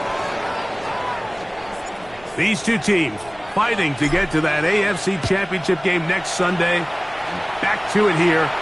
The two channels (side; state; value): right; noise; rumble, 24 dB below the sound